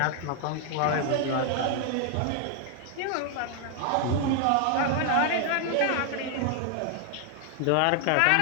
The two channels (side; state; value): both; different; correlation 0.00